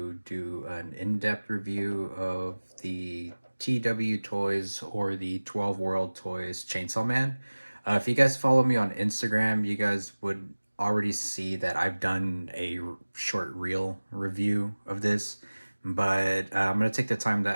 do an in-depth review of the TWToys or the 12 World Toys Chainsaw Man. If you guys follow me on Instagram, you guys would already see that I've done a short reel review of this, but I'm going to take the time to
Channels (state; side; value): inverted; both; correlation -1.00